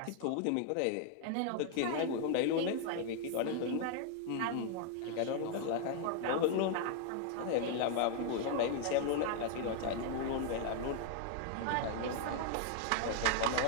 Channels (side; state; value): both; different; correlation 0.00